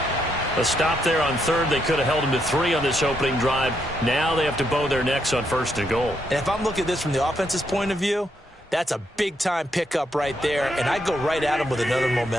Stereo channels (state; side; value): normal; both; correlation 0.78